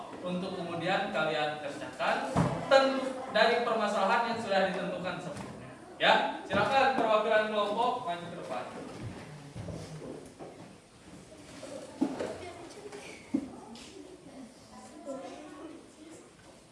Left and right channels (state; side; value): identical; both; correlation 1.00